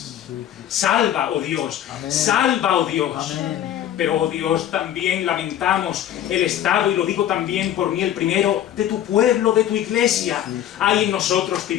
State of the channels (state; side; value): quieter; right; 11.2 dB